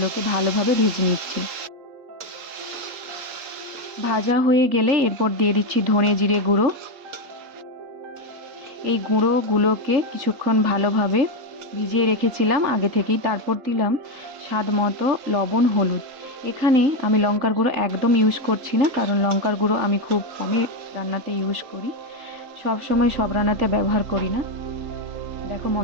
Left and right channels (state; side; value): late; left; 3.8 ms